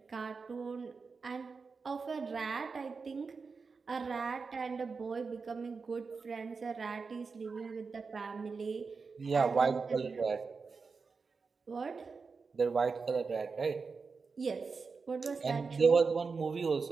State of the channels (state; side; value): quieter; left; 4.8 dB